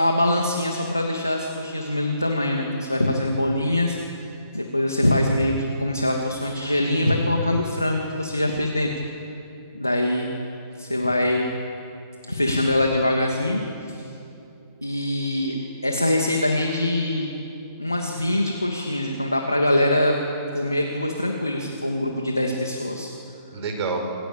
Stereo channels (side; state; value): both; inverted; correlation -0.78